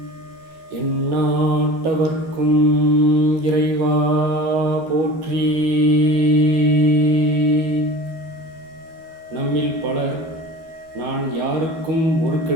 எந்நாட்டவர்க்கும் இறைவா போற்றி. நம்மில் பலர் நான் யாருக்கும் ஒரு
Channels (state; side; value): late; left; 12 ms